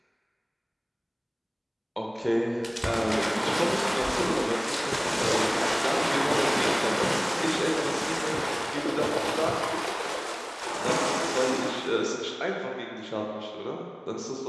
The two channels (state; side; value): identical; both; correlation 1.00